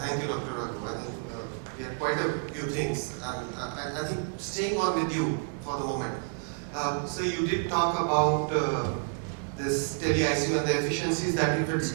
you, Dr. Raghu. I think we had quite a few things, and I think staying on with you for the moment. So you did talk about this tele-ICU and the efficiencies that if it's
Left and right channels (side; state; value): left; silent; 58 dB below the other